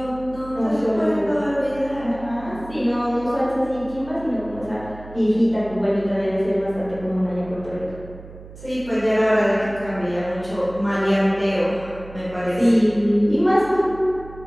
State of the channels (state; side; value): noise; right; hum, 17 dB below the sound